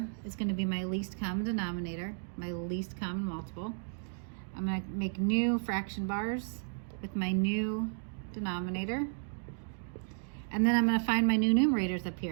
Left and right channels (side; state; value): left; silent; digital silence